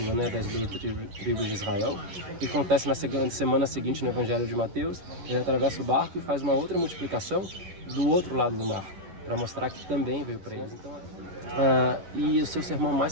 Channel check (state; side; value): late; left; 11 ms